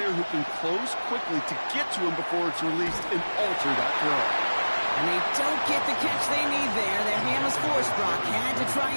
who can close quickly to get to him before it's released and alter that throw. And they don't get the catch they need there. Their hand was forced. Brock had to try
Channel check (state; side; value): inverted; both; correlation -1.00